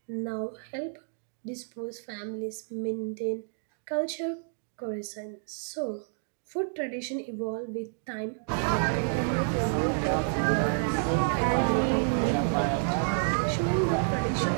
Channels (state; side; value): silent; left; digital silence